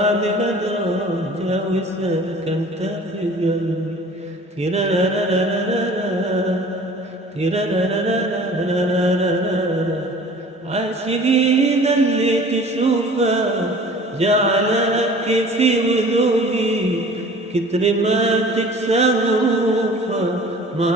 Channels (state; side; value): normal; both; correlation 0.46